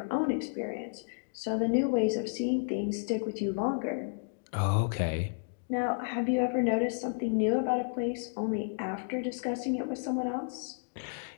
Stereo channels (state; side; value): silent; right; digital silence